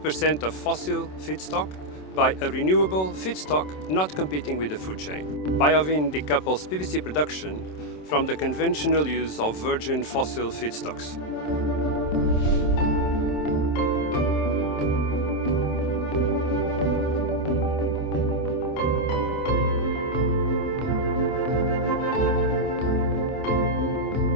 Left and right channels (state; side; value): late; right; 27 ms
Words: of fossil feedstock by a renewable feedstock not competing with the food chain. Biovyn decouples PVC production from the conventional use of virgin fossil feedstocks.